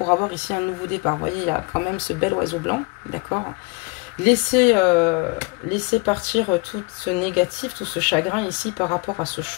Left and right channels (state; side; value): quieter; right; 28.6 dB